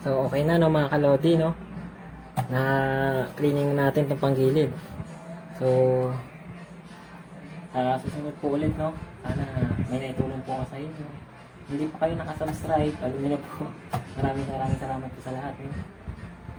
So, okay na no mga kalodi, no? Na cleaning natin itong panggilid. So, Sa susunod po ulit, no? Sana may naitulong po ako sa inyo. Hindi pa kayo nakasubscribe, alam niyo na po. Maraming salamat po sa lahat. No?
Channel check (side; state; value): both; identical; correlation 1.00